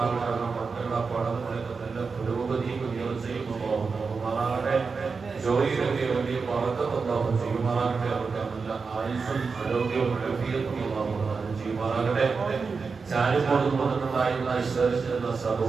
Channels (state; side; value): quieter; left; 4.9 dB